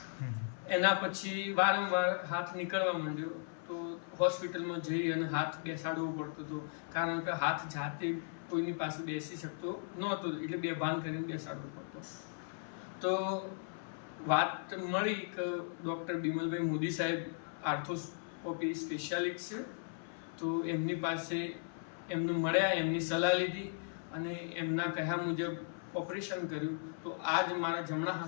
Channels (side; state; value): right; silent; 53 dB below the other